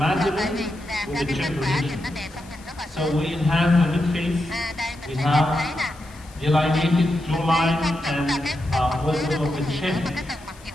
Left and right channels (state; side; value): noise; left; hiss, 23 dB below the sound